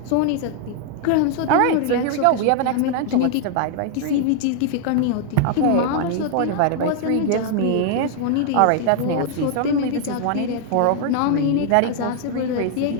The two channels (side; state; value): both; different; correlation 0.00